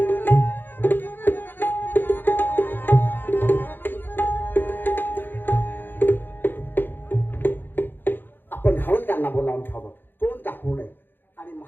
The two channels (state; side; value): late; right; 0.097 ms